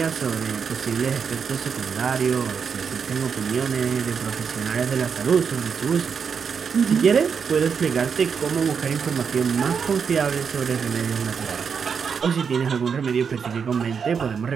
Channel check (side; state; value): left; quieter; 6.4 dB